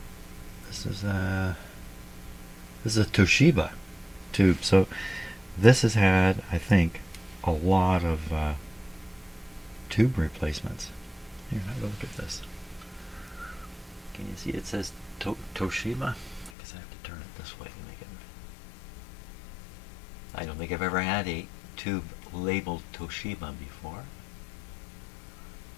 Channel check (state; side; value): drops out; right; at 16.5 s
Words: This is a Toshiba tube. So this has had, I think, a lot of tube replacements. Here, have a look at this. Can you see it says Toshiba? I guess I have to turn it this way to make it. I don't think I've ever had a tube labeled Toshiba before.